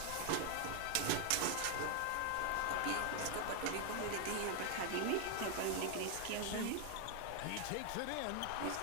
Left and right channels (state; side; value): different; both; correlation 0.00